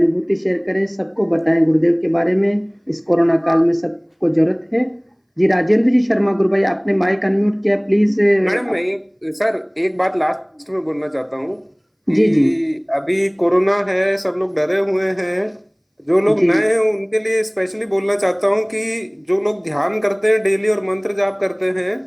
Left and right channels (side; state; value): both; identical; correlation 1.00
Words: शेयर करें, सबको बताएं गुरुदेव के बारे में। इस कोरोना काल में सबको जरूरत है। जी राजेंद्र जी शर्मा गुरु भाई, आपने माइक अनम्यूट किया, प्लीज। मैडम एक बात लास्ट में बोलना चाहता हूँ जी जी कि अभी कोरोना है, सब लोग डरे हुए हैं। जो लोग जी नए हैं उनके लिए स्पेशली बोलना चाहता हूँ कि जो लोग ध्यान करते हैं डेली और मंत्र जाप करते हैं,